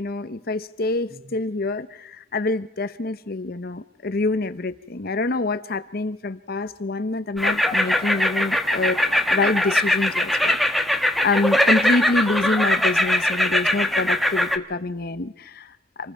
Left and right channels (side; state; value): both; normal; correlation 0.66